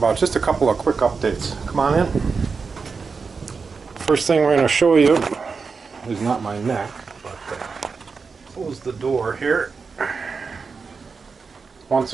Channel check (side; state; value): left; quieter; 5.0 dB